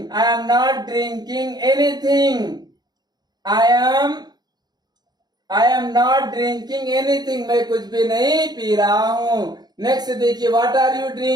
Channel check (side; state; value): left; late; 0.20 ms